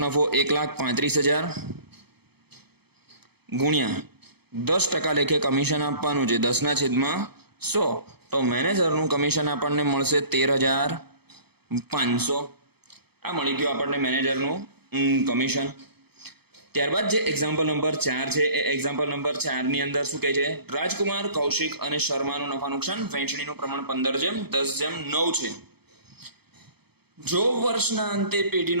1,35,000 ગુણ્યા 10% લેખે કમિશન આપવાનું છે 10/100. તો મેનેજરનું કમિશન આપણને મળશે 13,500. આ મળી ગયું આપણને મેનેજરનું કમિશન. ત્યારબાદ જે એક્ઝામ્પલ નંબર 4 છે એ એક્ઝામ્પલ નંબર 4 ની અંદર શું કહે છે? રાજકુમાર, કૌશિક અને શર્માનું નફા નુકસાન વહેંચણીનું પ્રમાણ 15:10:9 છે. જો વર્ષના અંતે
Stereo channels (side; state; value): left; late; 0.97 ms